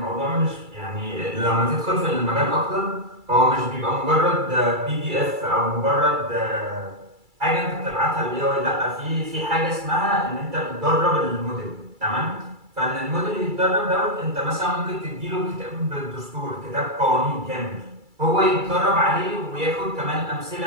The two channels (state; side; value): late; left; 2.3 ms